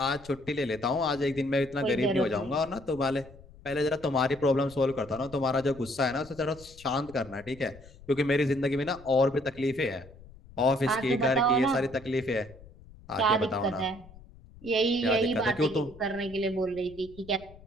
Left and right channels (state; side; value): noise; left; rumble, 21 dB below the sound